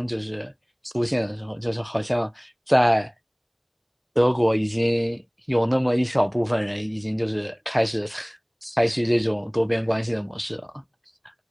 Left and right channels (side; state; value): both; identical; correlation 1.00